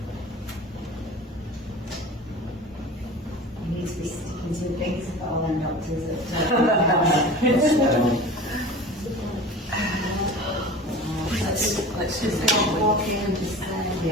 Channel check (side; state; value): both; normal; correlation 0.37